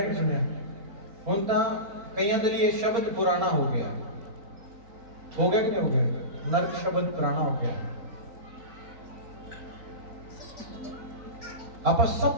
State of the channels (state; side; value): late; left; 3.9 ms